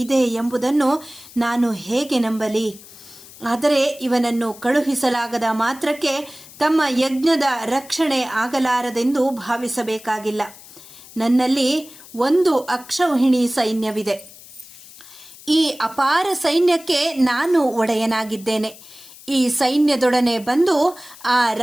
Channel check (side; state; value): left; noise; hiss, 20 dB below the sound